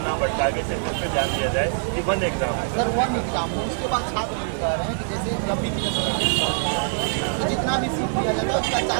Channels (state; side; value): silent; left; 63 dB below the other